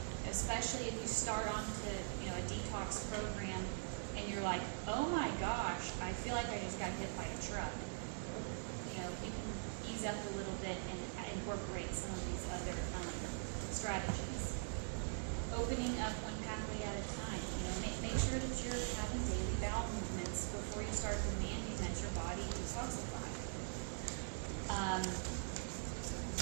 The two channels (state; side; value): silent; left; digital silence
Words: especially if you start onto a detox program and you're like, oh my gosh, I feel like I just got hit by a truck.